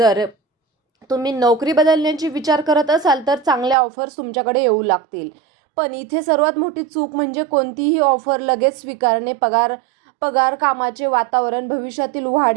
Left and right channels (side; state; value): left; drops out; at 3.8 s